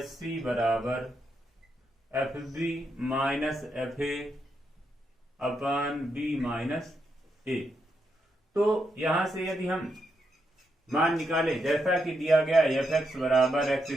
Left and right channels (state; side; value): normal; both; correlation 0.82